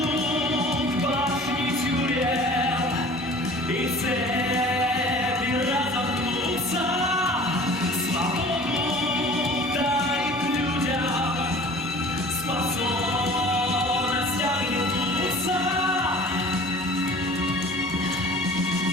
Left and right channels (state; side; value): normal; both; correlation 0.45